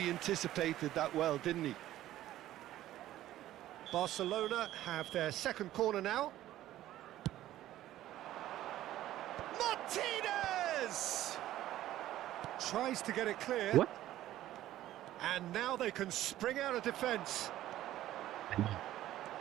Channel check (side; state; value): left; quieter; 13.9 dB